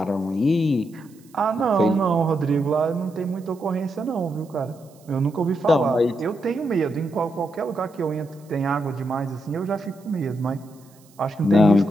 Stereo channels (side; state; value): right; noise; hiss, 29 dB below the sound